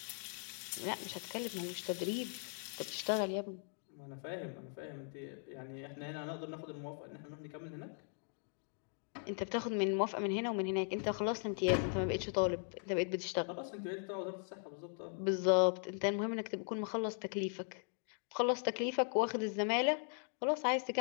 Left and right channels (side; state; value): right; silent; 52 dB below the other